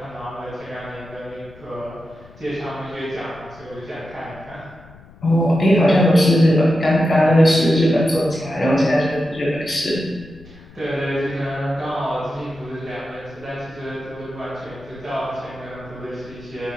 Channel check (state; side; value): noise; left; rumble, 22 dB below the sound